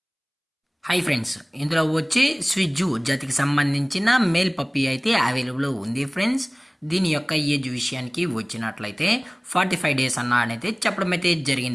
Hi friends, ఇందులో వచ్చి స్విజ్జు జాతికి సంబంధించిన మేల్ పప్పీ అయితే అవైలబుల్ ఉంది ఫ్రెండ్స్. దీని యొక్క ఏజ్ విషయానికి వచ్చినట్లయితే 45 డేస్ అయితే చెప్పడం అయితే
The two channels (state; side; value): identical; both; correlation 1.00